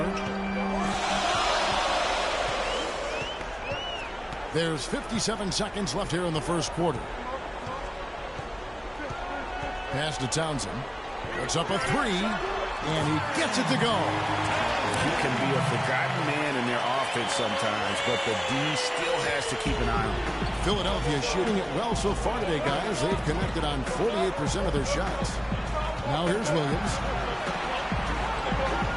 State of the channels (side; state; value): both; identical; correlation 1.00